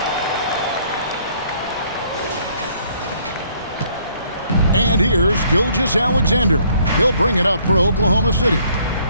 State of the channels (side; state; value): both; inverted; correlation -0.63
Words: And here's Gilgeous-Alexander. He'll bring it up for Oklahoma City.